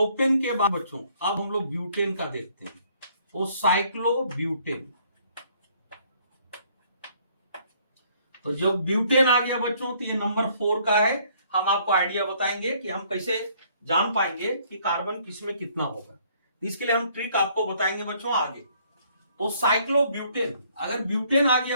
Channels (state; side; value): inverted; both; correlation -0.63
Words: के बाद बच्चों अब हम लोग ब्यूटेन का देखते हैं, वो साइक्लो ब्यूटेन। तो जब ब्यूटेन आ गया बच्चों तो ये नंबर 4 का है। हम आपको आइडिया बताएंगे कि हम कैसे जान पाएंगे कि कार्बन किसमें कितना होगा, इसके लिए हम ट्रिक आपको बताएंगे बच्चों आगे। तो साइक्लो ब्यूटेन, अगर ब्यूटेन आ